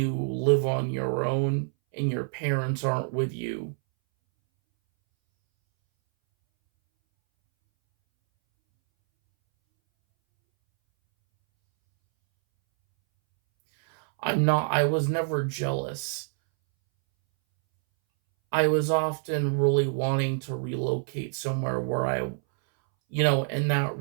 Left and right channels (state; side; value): silent; left; 60 dB below the other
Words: live on your own and your parents aren't with you. I was never jealous. I was often really wanting to relocate somewhere where and that